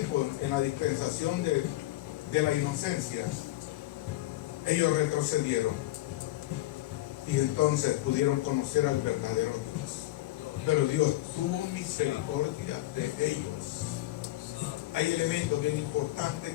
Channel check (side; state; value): right; quieter; 16.7 dB